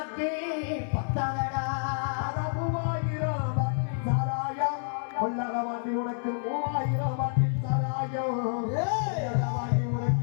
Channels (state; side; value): silent; right; 59 dB below the other